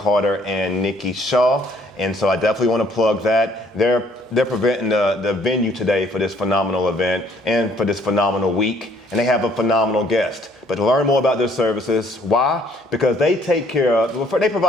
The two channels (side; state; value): both; normal; correlation 0.62